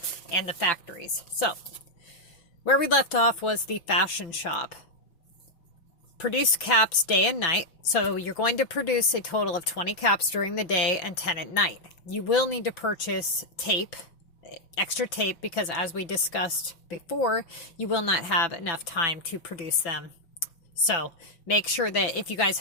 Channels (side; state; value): right; late; 6.0 ms